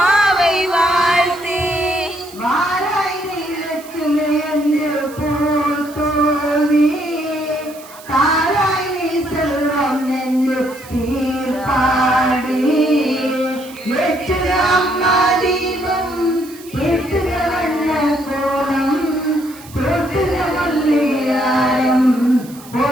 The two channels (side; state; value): right; noise; hiss, 20 dB below the sound